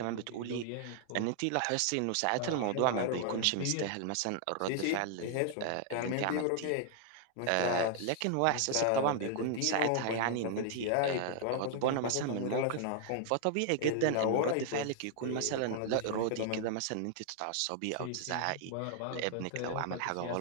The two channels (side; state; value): both; different; correlation 0.00